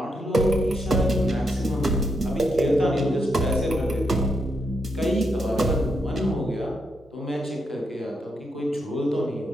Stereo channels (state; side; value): normal; both; correlation 0.80